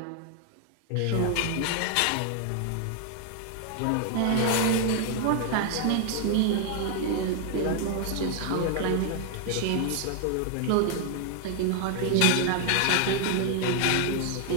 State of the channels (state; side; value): different; both; correlation 0.00